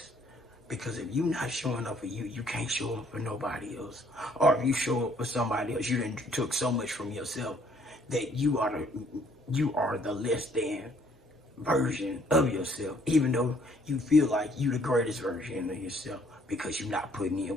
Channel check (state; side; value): normal; both; correlation 0.63